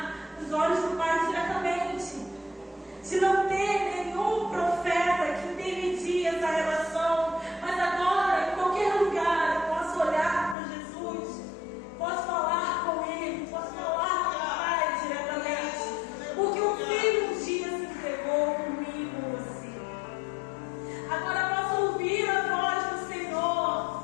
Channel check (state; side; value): drops out; right; at 10.6 s